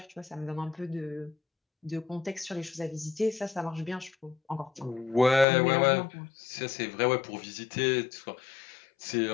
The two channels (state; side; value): drops out; right; at 5.5 s